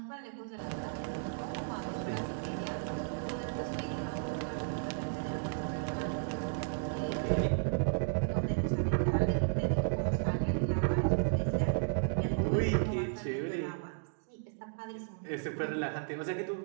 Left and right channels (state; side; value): silent; left; digital silence